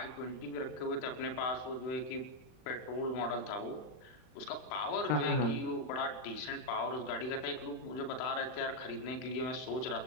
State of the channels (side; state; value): right; late; 39 ms